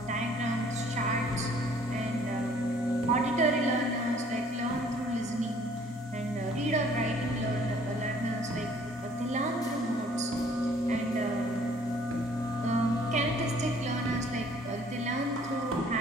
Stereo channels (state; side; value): normal; both; correlation 0.58